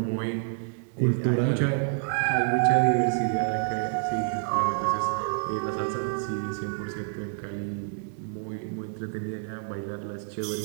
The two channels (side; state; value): left; silent; digital silence